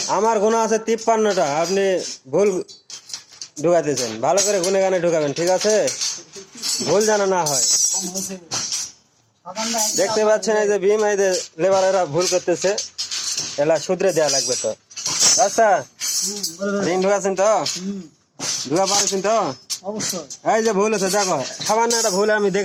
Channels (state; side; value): identical; both; correlation 1.00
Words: আমার গুণা আছে 53টা, আপনি ভুল ঢুকাতেছেন। ভালো করে গুনে গানে ঢুকাবেন, ঠিক আছে? ভুল যেন না হয়। দেখতে পাচ্ছেন এই যে ভীম, এই যে লেবারেরা ভুল করতেছে, এলা শুধরে দেওয়া লাগবে তো। রাস্তা রিং ঢুকাছেন তো? ঢুকা পারছেন তো? এই যে ভুল আছে দেখো, সামান্য একটা ভুল আমি